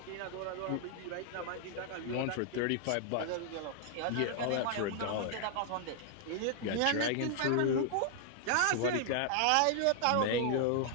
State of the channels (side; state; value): both; different; correlation 0.00